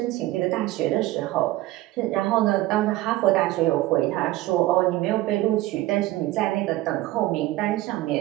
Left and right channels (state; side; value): quieter; left; 17.0 dB